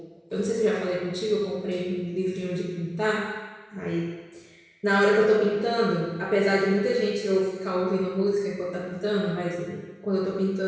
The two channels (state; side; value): identical; both; correlation 1.00